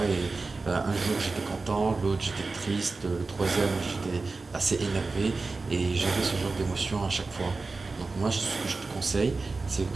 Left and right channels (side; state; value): left; quieter; 3.8 dB